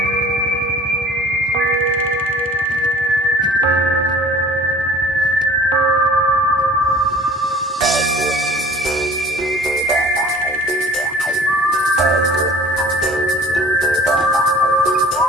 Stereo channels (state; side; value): normal; both; correlation 0.47